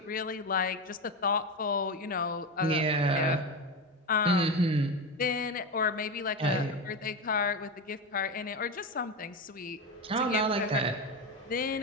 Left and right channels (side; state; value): both; normal; correlation 0.18